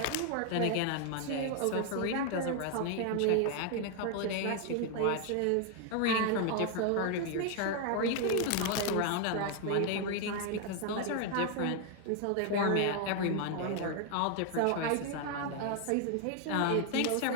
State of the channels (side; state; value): both; different; correlation 0.00